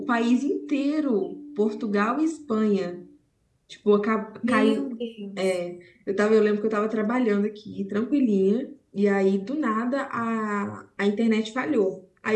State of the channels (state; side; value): identical; both; correlation 1.00